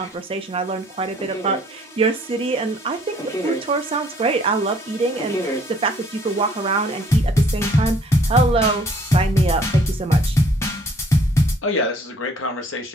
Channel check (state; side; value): normal; both; correlation 0.60